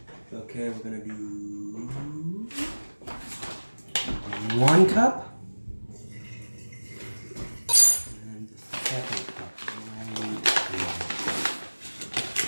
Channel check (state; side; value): inverted; both; correlation -1.00